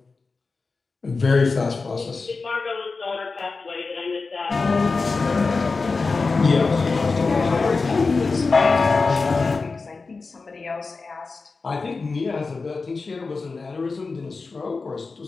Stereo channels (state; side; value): quieter; right; 4.1 dB